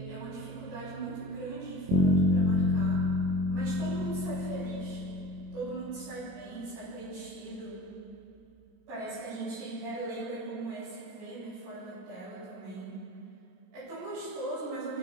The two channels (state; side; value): late; left; 26 ms